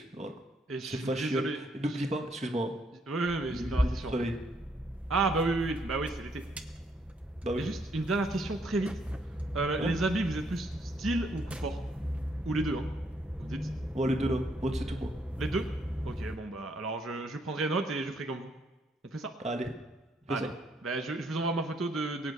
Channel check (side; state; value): both; normal; correlation 0.71